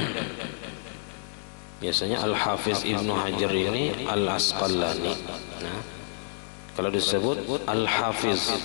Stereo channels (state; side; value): silent; right; digital silence